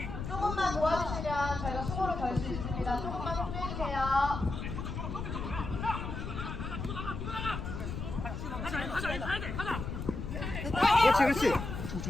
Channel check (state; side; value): noise; left; rumble, 5 dB below the sound